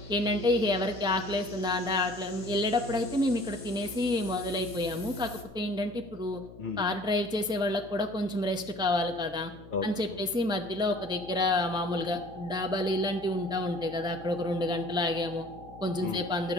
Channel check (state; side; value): noise; left; hum, 19 dB below the sound